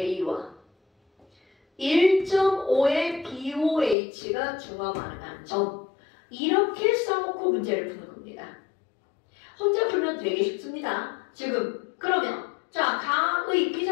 1.5의 BOH가 중화 반응한 점. 이렇게 써놓고 문제를 푸는 겁니다. 혼자 풀면 되게 쉽습니다. 지금 그러면 자, 가의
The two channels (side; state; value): right; drops out; at 4.0 s